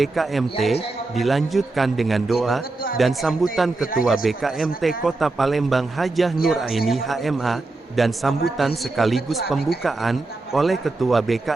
dilanjutkan dengan doa, dan sambutan Ketua BKMT Kota Palembang Hajah Nuraini HMA, dan sambutan sekaligus pembukaan, oleh Ketua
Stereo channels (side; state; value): left; quieter; 3.3 dB